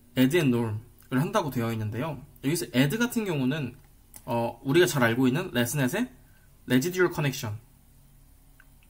add and norm을 한다고 되어 있는데요. 여기서 add 같은 경우는 우리가 잘 알고 있는 레스넷의 residual connection을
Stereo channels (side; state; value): both; identical; correlation 1.00